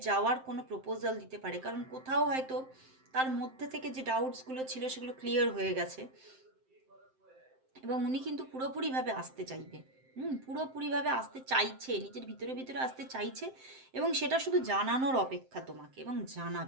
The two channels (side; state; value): left; late; 7.7 ms